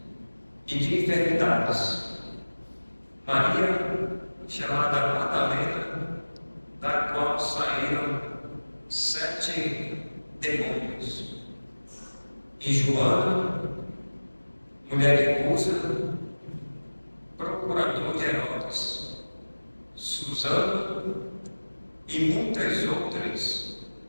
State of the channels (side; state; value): both; inverted; correlation -1.00